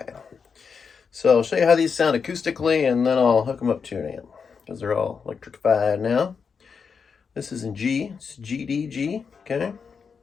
So I'll show you how these sound acoustically, and then I'll hook them up to an amp, because they're all electrified now. This is in G. It's G, D, G. Okay.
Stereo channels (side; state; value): right; quieter; 5.9 dB